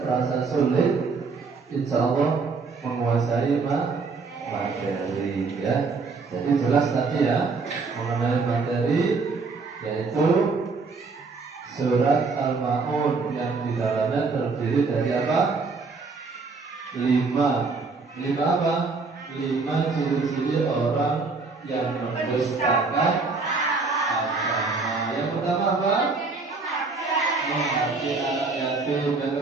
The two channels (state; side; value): quieter; left; 4.3 dB